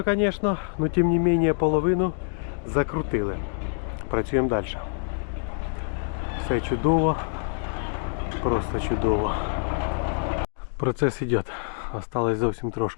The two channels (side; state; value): right; silent; 55 dB below the other